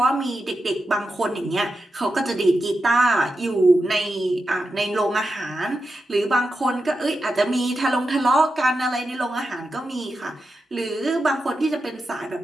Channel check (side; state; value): both; normal; correlation 0.89